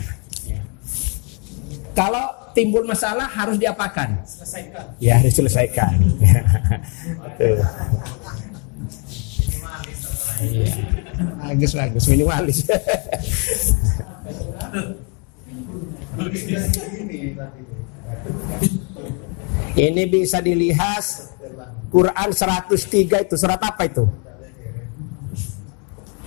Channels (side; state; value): right; quieter; 35.9 dB